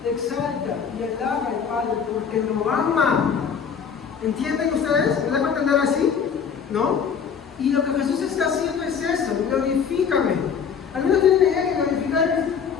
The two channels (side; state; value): right; quieter; 6.9 dB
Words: exalta y alaba al Padre porque lo ama. ¿Entienden ustedes? ¿Me dejo entender así? ¿No? Y lo que Jesús está haciendo es eso, glorifícame. Algunos tienen la idea que glorificar es,